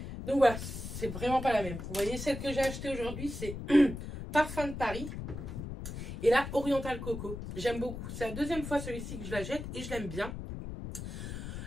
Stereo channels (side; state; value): left; noise; rumble, 7 dB below the sound